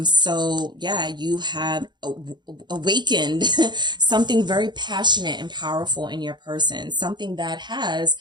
So yeah, you have awakened something very passionate and powerful in your person, something that has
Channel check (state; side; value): late; left; 0.21 ms